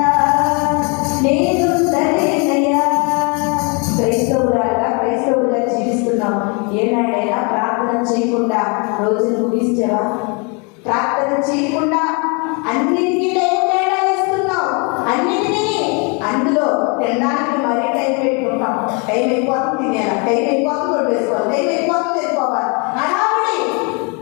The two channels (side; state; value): right; quieter; 33.3 dB